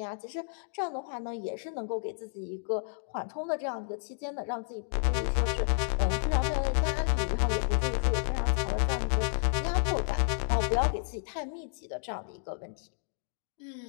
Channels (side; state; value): right; silent; digital silence